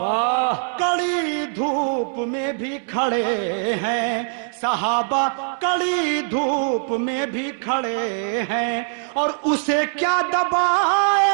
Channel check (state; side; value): silent; left; 64 dB below the other